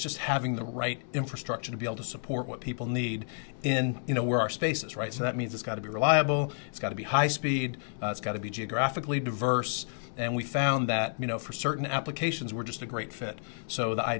just having the right infrastructure to be able to support what people need in, you know, where our space is, right? So that means it's got to be reliable, it's got to be high speed, it's got to be geographically diverse. And we found that, you know, for certain applications, we're just a great fit. So the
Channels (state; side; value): silent; right; digital silence